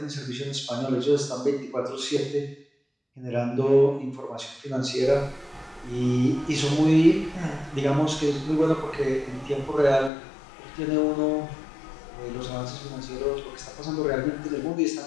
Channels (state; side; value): drops out; right; at 10.1 s